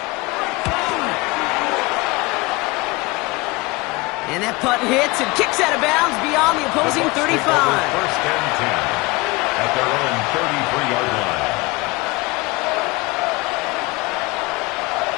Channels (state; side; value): quieter; right; 23.8 dB